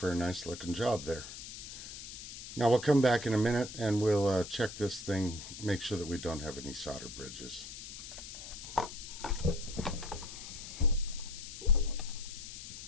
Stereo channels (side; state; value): left; noise; hiss, 11 dB below the sound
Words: a nice looking job there. Now we'll come back in a minute and we'll check this thing, make sure that we don't have any solder bridges.